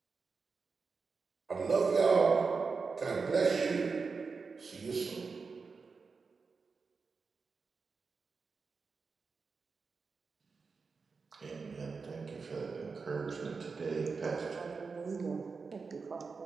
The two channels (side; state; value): left; quieter; 4.8 dB